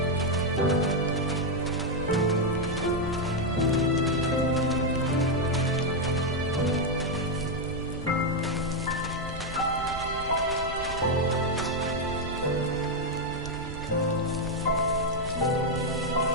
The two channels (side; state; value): right; noise; rumble, 11 dB below the sound